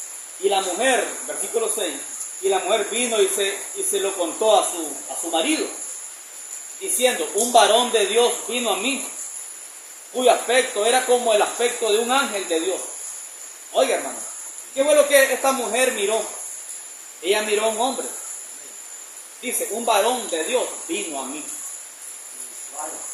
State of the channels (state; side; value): identical; both; correlation 1.00